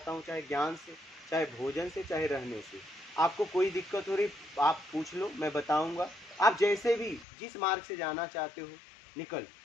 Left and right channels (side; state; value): right; drops out; at 7.2 s